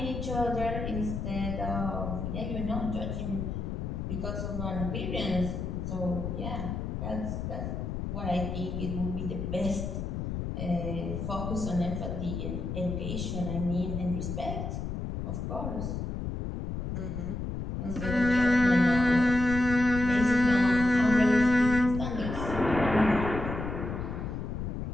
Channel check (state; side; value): noise; left; rumble, 4 dB below the sound